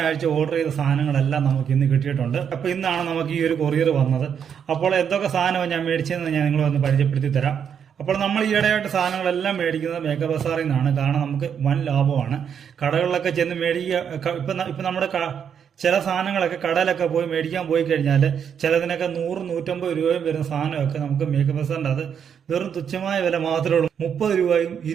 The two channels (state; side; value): quieter; left; 7.8 dB